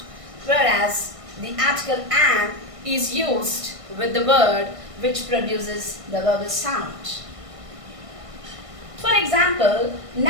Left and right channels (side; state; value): left; late; 1.6 ms